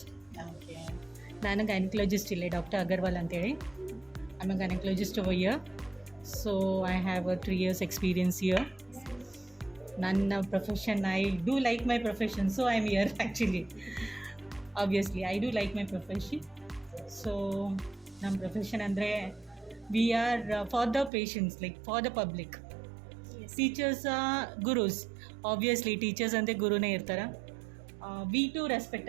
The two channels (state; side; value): drops out; left; at 21.1 s